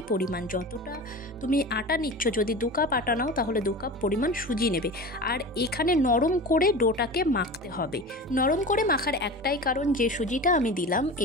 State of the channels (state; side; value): normal; both; correlation 0.32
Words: পরিমাণ। যতটা তুমি আটা নিচ্ছ, যদি 2 কাপ আটা নাও তাহলে 2 কাপ পরিমাণ সুজি নেবে। আর এখানে নরম করে ডোটাকে মাখতে হবে। নরম করে মাখার একটাই কারণ, যে সুজিটা আমি দিলাম